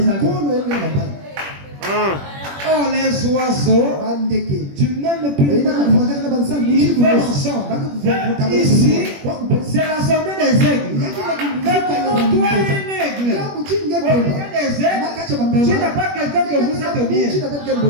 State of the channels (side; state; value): left; late; 21 ms